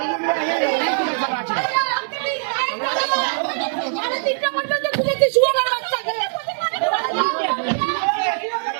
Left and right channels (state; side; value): silent; left; 65 dB below the other